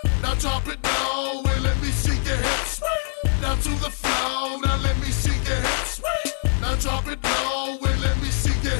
Now drop it low and let me see your hips. Now to the flow, now let me see your hips. Now drop it low and let me see your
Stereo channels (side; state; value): right; silent; digital silence